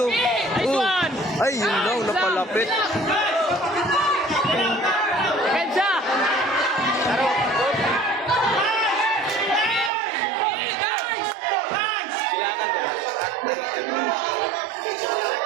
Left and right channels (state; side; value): drops out; left; at 9.9 s